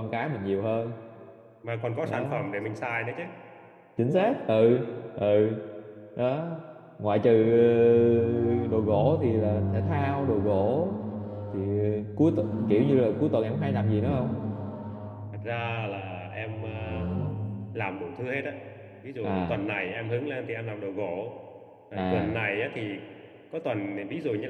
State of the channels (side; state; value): both; identical; correlation 1.00